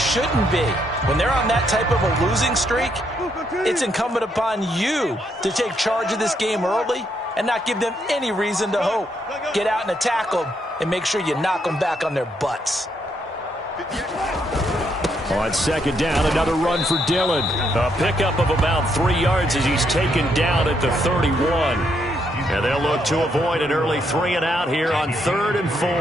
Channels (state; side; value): normal; both; correlation 0.75